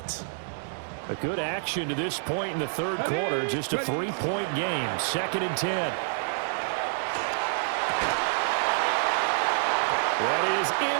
A good action to this point in the third quarter. Just a 3-point game. 2nd and 10. That is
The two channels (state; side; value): silent; left; digital silence